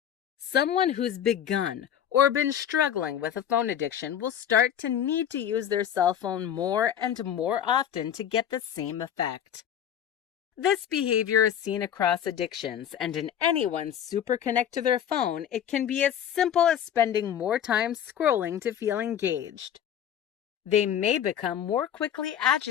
Someone who's begun or been struggling with a phone addiction will start to need to use their cell phone more and more often to get the same effect. This behavior is seen across addictions, and in anyone super connect to their phone, it can be as simple as spending more time scrolling to feel engaged. They may become more quickly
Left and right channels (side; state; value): right; quieter; 9.6 dB